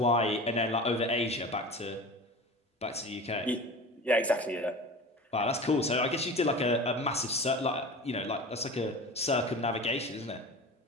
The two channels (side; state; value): both; normal; correlation 0.34